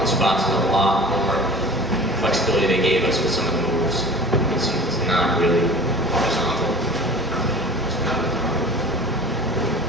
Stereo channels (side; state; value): both; normal; correlation 0.40